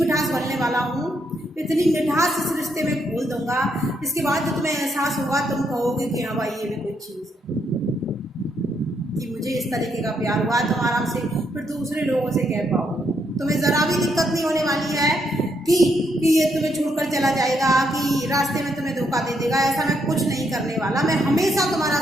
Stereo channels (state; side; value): normal; both; correlation 0.76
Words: भरने वाला हूँ, इतनी मिठास इस रिश्ते में घोल दूंगा, इसके बाद जो तुम्हें एहसास होगा तुम कहोगे कि हाँ भाई ये भी कोई चीज़ है, कि मुझे इस तरीके का प्यार हुआ। तुम आराम से फिर दूसरे लोगों से कह पाओगे, तुम्हें ज़रा भी दिक्कत नहीं होने वाली है कि ये तुम्हें छोड़कर चला जाएगा, कि रास्ते में तुम्हें धोखा दे देगा। ऐसा मैं कुछ नहीं करने वाला, मैं हमेशा तुम्हारा